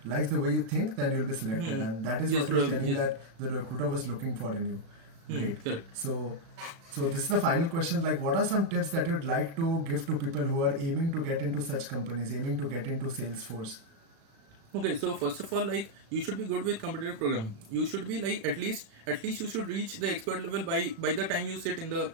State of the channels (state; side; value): late; left; 36 ms